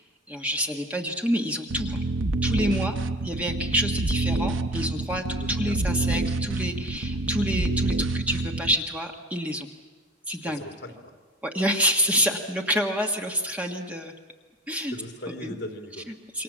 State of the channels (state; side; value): normal; both; correlation 0.40